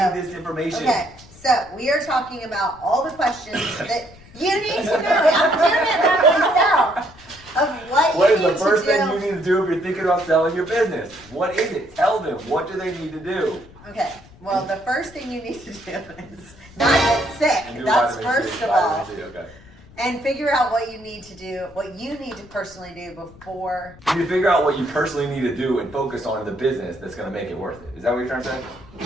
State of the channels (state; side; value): noise; left; rumble, 22 dB below the sound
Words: need this information. Okay, so we are talking about all the questions that you need to know. I'm doing it by myself. Of What you is need the first to do. thing you need to do if you're thinking about selling your business? What is it? Tell them. What do they need to do? Okay, well, the first thing you need to do is not get sick. And do That's vitamin C, first of all. vitamin C, okay. And figure out what you need to do, what you need to personally do before. You need to figure out what you personally need to do and focus on in the business that's going to make it worth it. Is that what you're trying to say?